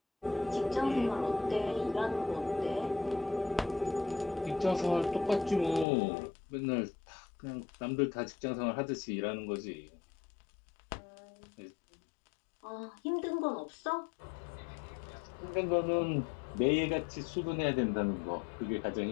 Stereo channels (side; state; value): right; drops out; at 5.9 s